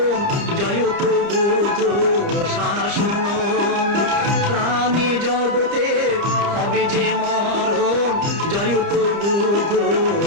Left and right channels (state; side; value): late; left; 30 ms